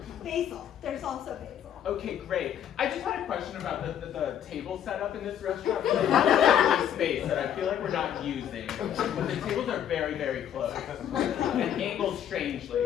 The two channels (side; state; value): right; quieter; 9.8 dB